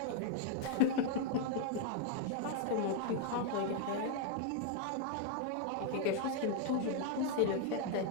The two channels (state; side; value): different; both; correlation 0.00